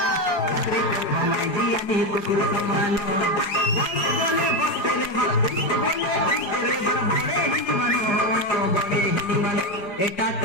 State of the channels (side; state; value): right; late; 4.9 ms